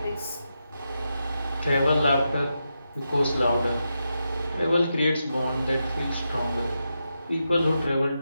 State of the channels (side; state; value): both; inverted; correlation -0.87